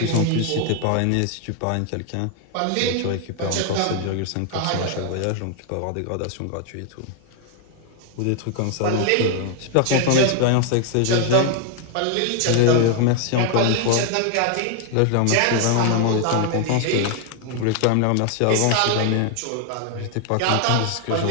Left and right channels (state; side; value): different; both; correlation 0.00